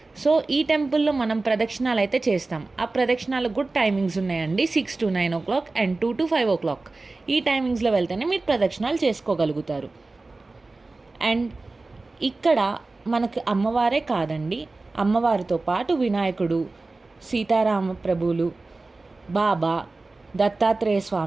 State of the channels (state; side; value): quieter; left; 3.4 dB